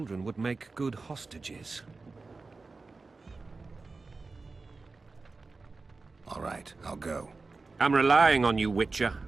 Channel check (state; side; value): quieter; left; 3.9 dB